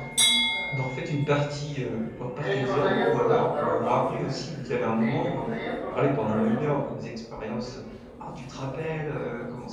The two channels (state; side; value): identical; both; correlation 1.00